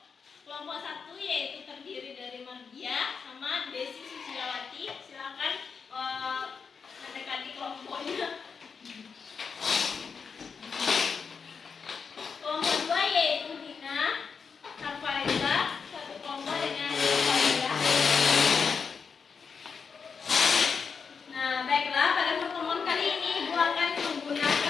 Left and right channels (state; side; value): quieter; right; 5.7 dB